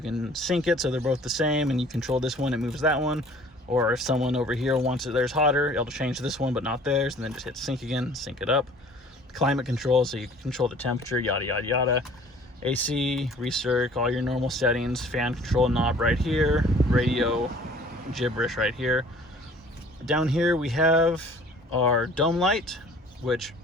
can sync it so they're both the same, and you control this one, it moves that one. Or if someone over here wants it theirs hotter, it'll change this one but not theirs, and then just hit sync again, sync it up. Climate control, so you can control the temperature, yada yada yada. AC, recirc, all your normal settings. Fan control knob right here, radio gibberish right here. Down here we have our dome light, which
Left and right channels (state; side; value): normal; both; correlation 0.51